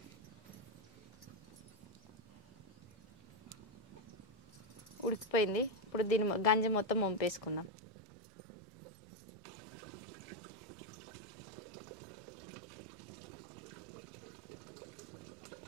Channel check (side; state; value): left; drops out; at 7.7 s